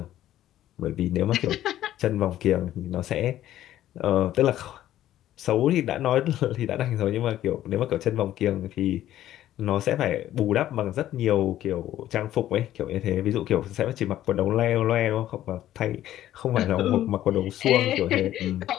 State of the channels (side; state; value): right; quieter; 13.0 dB